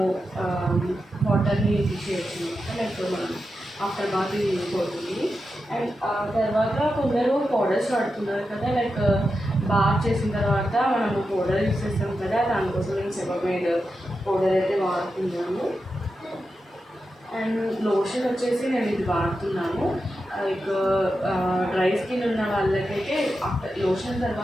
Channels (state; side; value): normal; both; correlation 0.89